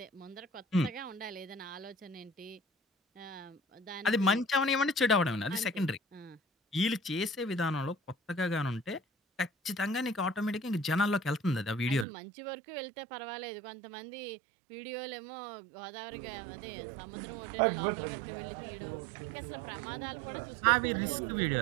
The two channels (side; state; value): left; drops out; at 12.1 s